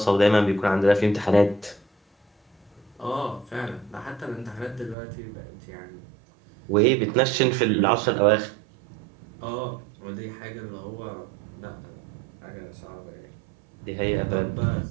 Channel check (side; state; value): left; drops out; at 5.0 s